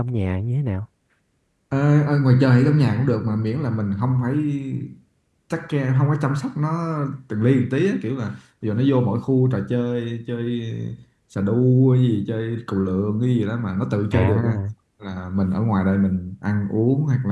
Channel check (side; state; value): both; identical; correlation 1.00